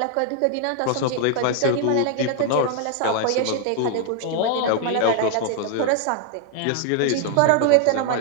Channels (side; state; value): both; different; correlation 0.00